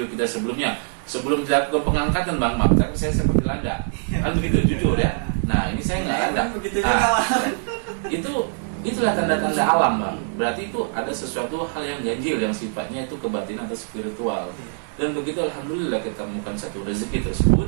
kita sebelumnya, sebelum dilakukan pengangkatan bang, maka saya seperti landa, kan begitu jujur ya. Nah ini saya nggak landa. Begitu juga. Itulah tanda-tanda alam bang. Berarti itu ada sesuatu hal yang ganjil yang sifatnya itu kebatinan atau spiritual. Dan begitu alhamdulillah kita temukan satu rezeki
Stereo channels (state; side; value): silent; left; digital silence